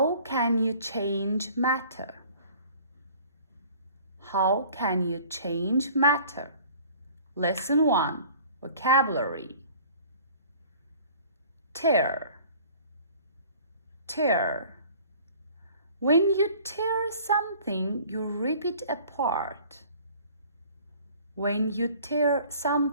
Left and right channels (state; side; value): inverted; both; correlation -0.50